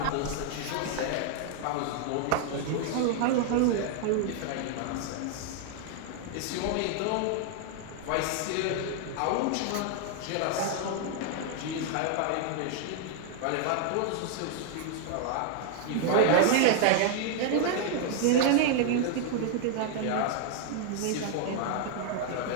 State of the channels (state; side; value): different; both; correlation 0.00